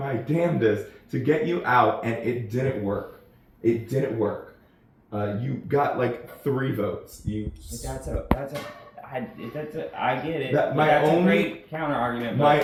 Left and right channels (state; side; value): identical; both; correlation 1.00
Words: damnedest to get you out, and it didn't work. It didn't work. You got like 3 votes. I get it. That's a great counter argument.